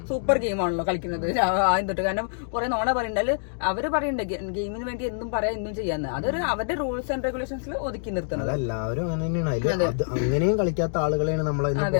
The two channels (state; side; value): silent; right; digital silence